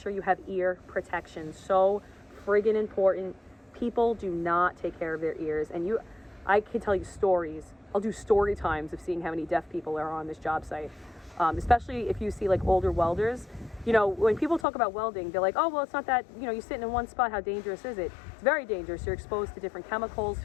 you have ear protection. So friggin' important. People do not take care of their ears. And I can tell you stories. I'll do story times of seeing how many deaf people are on this job site. Especially if you see like older welders. You know, when people talk about welding, they're like, oh, well, it's not that, you know, you're sitting in one spot. How dangerous is it? It's very dangerous. You're exposed to different chemicals,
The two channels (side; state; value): right; drops out; at 14.7 s